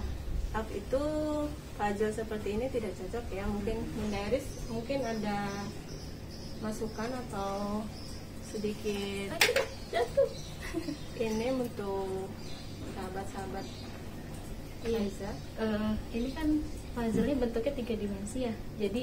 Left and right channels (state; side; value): identical; both; correlation 1.00